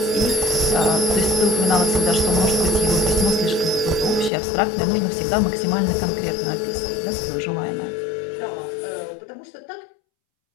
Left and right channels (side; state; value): right; drops out; at 4.3 s